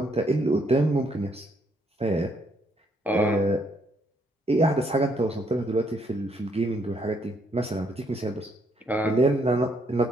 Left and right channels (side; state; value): both; normal; correlation 0.71